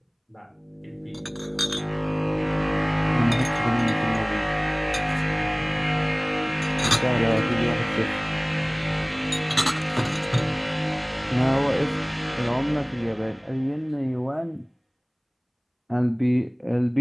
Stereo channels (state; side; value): identical; both; correlation 1.00